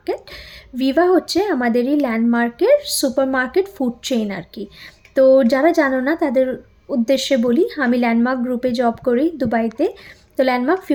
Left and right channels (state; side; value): identical; both; correlation 1.00